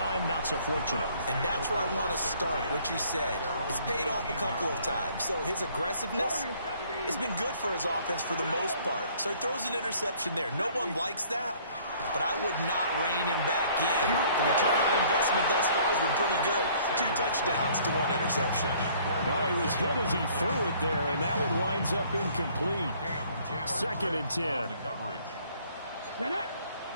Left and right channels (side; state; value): both; inverted; correlation -0.58